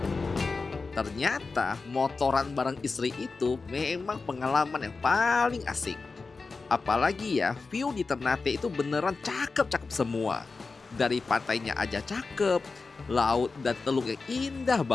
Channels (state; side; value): quieter; right; 4.2 dB